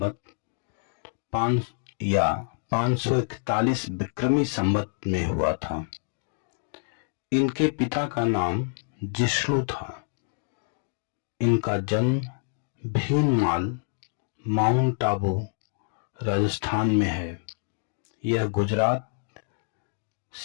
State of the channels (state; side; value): silent; right; digital silence